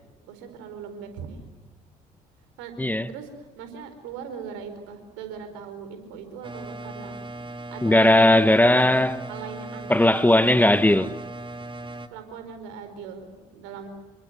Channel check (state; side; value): normal; both; correlation 0.82